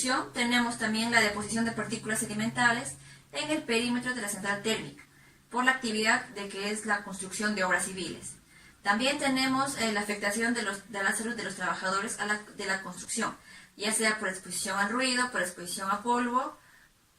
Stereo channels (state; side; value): identical; both; correlation 1.00